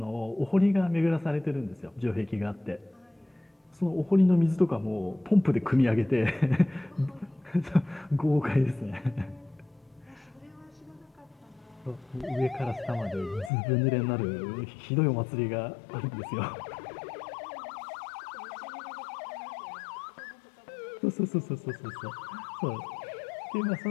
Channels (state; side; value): drops out; right; at 13.5 s